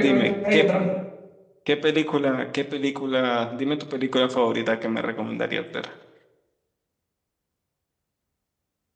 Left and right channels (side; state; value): both; identical; correlation 1.00